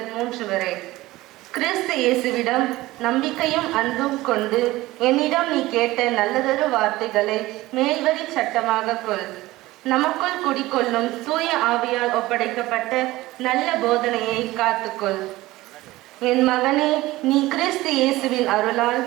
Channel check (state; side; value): quieter; left; 18.2 dB